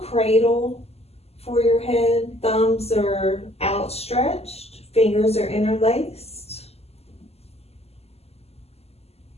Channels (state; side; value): late; right; 0.29 ms